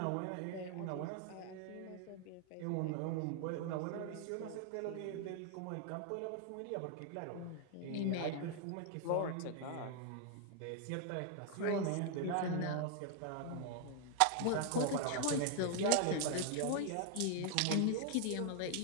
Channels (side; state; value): both; different; correlation 0.00